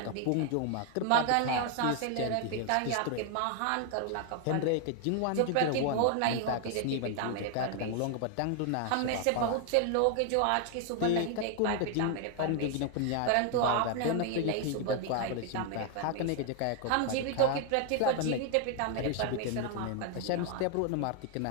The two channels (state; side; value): different; both; correlation 0.00